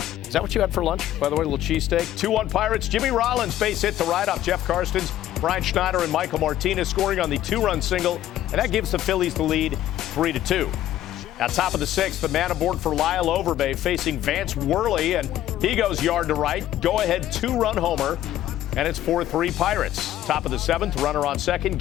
Is that what you had for lunch, by the way, a little cheesesteak? 2-1 Pirates. Jimmy Rollins base hit to right off Jeff Karstens. Brian Schneider and Michael Martinez scoring on the 2-run single, and that gives the Phillies the lead 3-2. At top of the 6th, the man aboard for Lyle Overbay facing Vance Worley, and he goes yard to right. Go-ahead 2-run homer, and it's 4-3 Pirates. Top of the 7th, runner on second,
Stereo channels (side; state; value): right; quieter; 12.9 dB